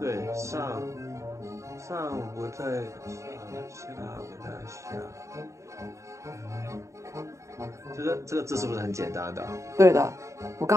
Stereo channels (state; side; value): late; left; 0.14 ms